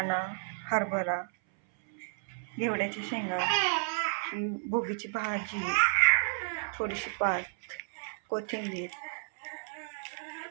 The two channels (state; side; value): silent; left; 56 dB below the other